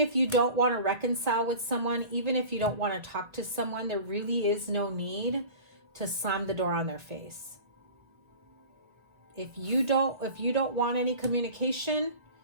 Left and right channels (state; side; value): late; left; 1.5 ms